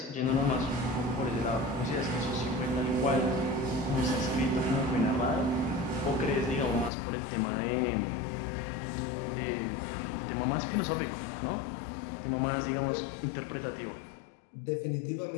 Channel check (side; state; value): right; drops out; at 6.9 s